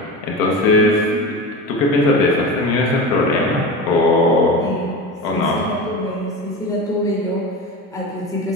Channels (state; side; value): normal; both; correlation 0.27